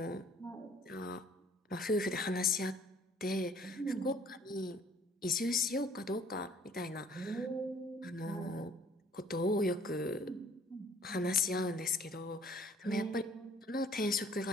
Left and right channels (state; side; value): normal; both; correlation 0.57